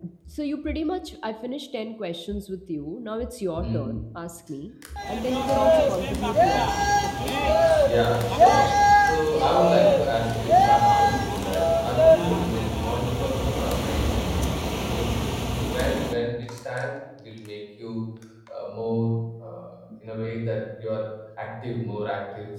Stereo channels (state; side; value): identical; both; correlation 1.00